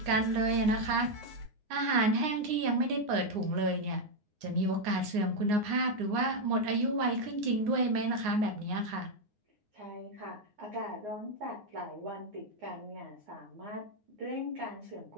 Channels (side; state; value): left; late; 9.6 ms